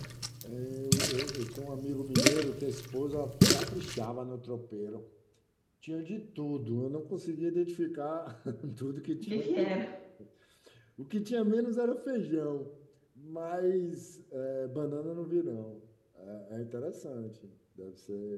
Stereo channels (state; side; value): identical; both; correlation 1.00